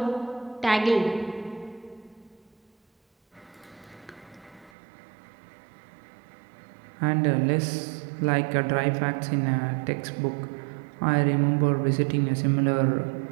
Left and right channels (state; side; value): drops out; left; at 4.7 s